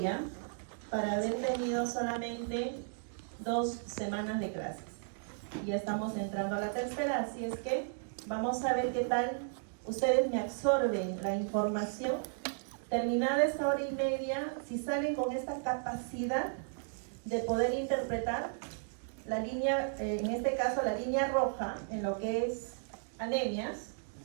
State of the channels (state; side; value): silent; left; digital silence